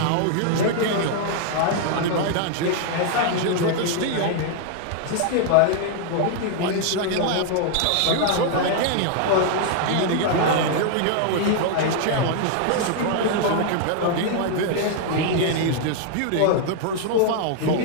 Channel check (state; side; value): different; both; correlation 0.00